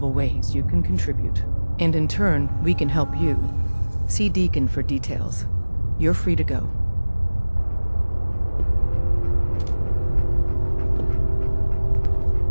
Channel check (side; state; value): both; inverted; correlation -1.00